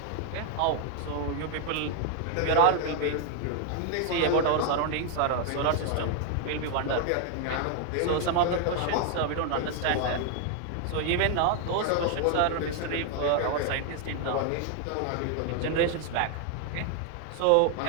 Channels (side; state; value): both; different; correlation 0.00